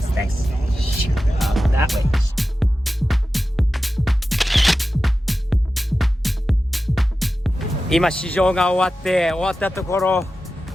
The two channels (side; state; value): both; normal; correlation 0.93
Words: Thanks. That way. 今試乗が終わったところ、